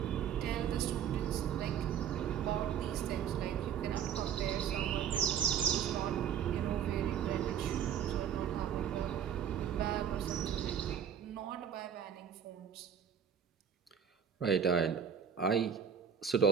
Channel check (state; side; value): quieter; left; 8.3 dB